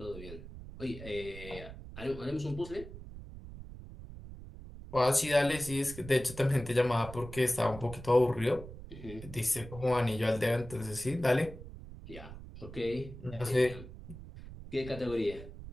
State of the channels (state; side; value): noise; right; rumble, 13 dB below the sound